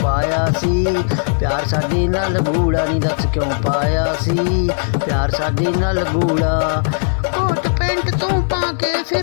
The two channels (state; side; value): silent; right; digital silence